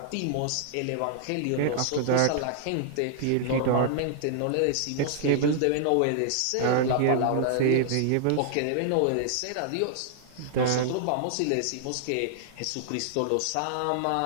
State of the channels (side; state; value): both; different; correlation -0.01